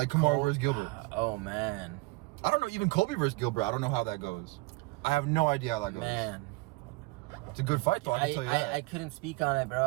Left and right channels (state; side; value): quieter; left; 24.0 dB